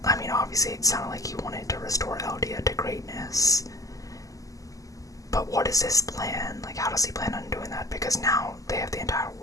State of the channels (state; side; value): late; right; 0.17 ms